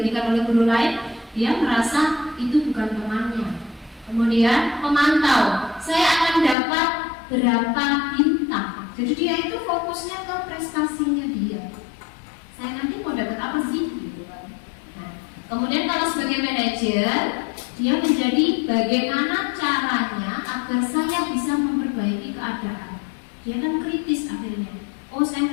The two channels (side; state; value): right; drops out; at 6.6 s